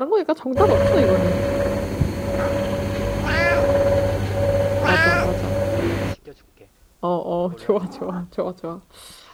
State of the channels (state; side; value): identical; both; correlation 1.00